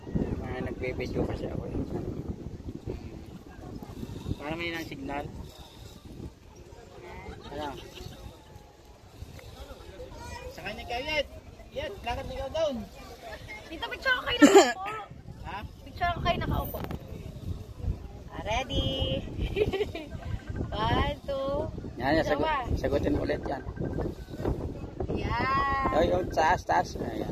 Nagbibideo kasi ako. Para may ng signal. Ano? Sa kanya kayo Yet. Yet, lakad ikaw doon. Dito, picture ko kayo nakaupo. Ha? Picture ko kayo nakaupo. Ready? 1, 2. Yan, sagutin ulit yan. Yan. Ay, yung taas.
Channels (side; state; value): both; identical; correlation 1.00